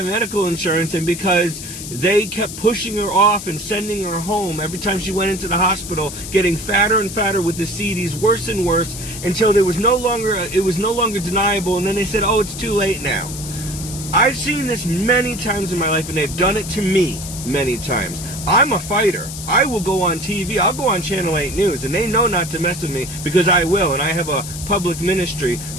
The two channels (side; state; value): left; noise; hiss, 10 dB below the sound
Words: medical insurance and because they kept pushing her off and sending her home every time she went into the hospital, getting fatter and fatter with the CDs, worse and worse, until it was no longer deniable, and then they said, oh, it's too late now. I've seen this many times in my life, and they've done it to me many times. I'm a fighter. I will go on TV. I'll go on Channel 8 News, and they know not to mess with me because I will, and I have a public ministry,